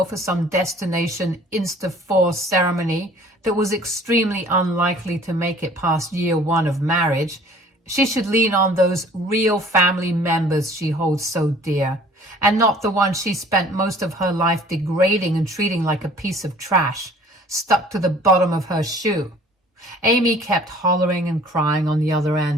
for some destination Insta-4 ceremony that was extremely unlikely to make it past year one of marriage, she should lean on those real family members she holds so dear, and not the one she spent most of her life degrading and treating like a piece of trash, stuck to the bottom of her shoe. Amy kept hollering and crying on the other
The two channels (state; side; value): normal; both; correlation 0.52